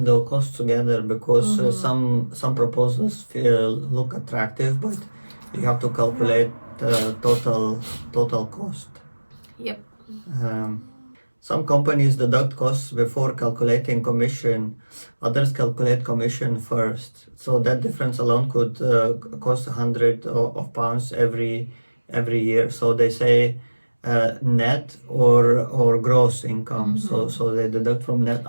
costs together, because some proposals look attractive, but you have to calculate total cost. Yep. Some companies deduct costs before calculating commission. Others calculate commission first. So that difference alone could cost £100 every year. So they say net or gross income. So they deduct from net,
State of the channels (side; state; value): both; inverted; correlation -1.00